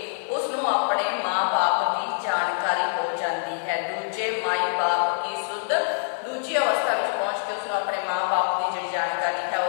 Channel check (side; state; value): right; silent; digital silence